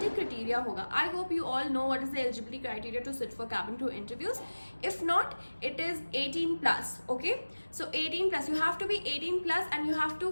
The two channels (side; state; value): both; inverted; correlation -1.00